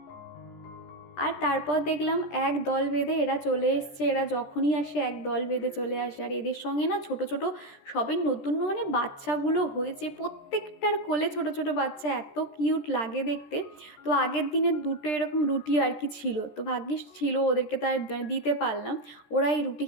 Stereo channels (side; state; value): right; late; 13 ms